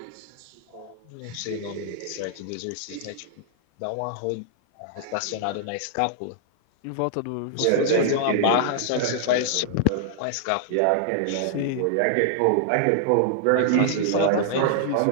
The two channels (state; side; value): different; both; correlation -0.01